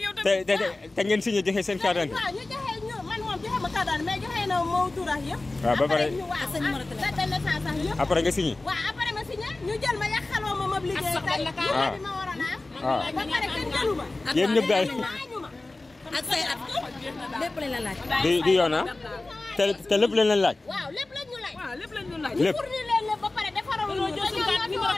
yow tamit. te ngeen signé joxe seen carte d'identité. waaw ñu joxe ñu man moom joxe ma carte d'identité mais joxe na moo tuurax yëpp. waaw ba pare date de naissance sax yëpp. après nga signé. waaw après ma signé ñu jël ma yàqaloo ma liggéey tey bi ma waroon a am. ba pare kenn jëlu ma. yéen ñëpp daal ak say at lépp lañ la laaj. di yoon ah te lépp lañ leen laaj. waaw lépp lañ ñu laaj. waaw lépp lañ ñu laaj. lépp pour ñu leen lépp ba pare defaral ñu jël suñu numéro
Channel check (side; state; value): right; quieter; 3.0 dB